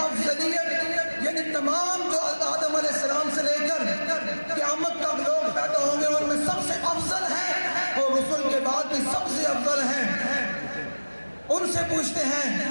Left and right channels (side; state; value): both; inverted; correlation -1.00